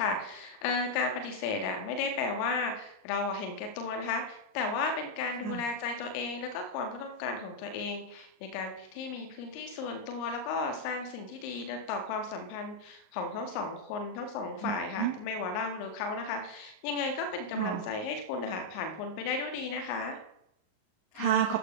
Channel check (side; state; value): right; late; 38 ms